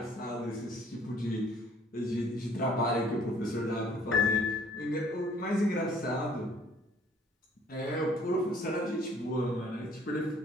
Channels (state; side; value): normal; both; correlation 0.57